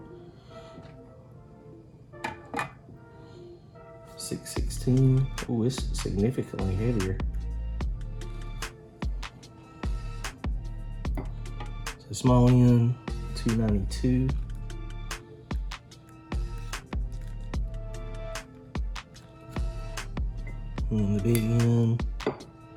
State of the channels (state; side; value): identical; both; correlation 1.00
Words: 616. Oh, it's significantly heavier. small end, 292. And the big end,